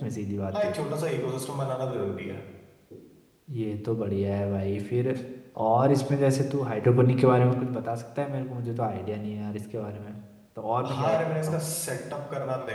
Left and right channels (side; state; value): both; identical; correlation 1.00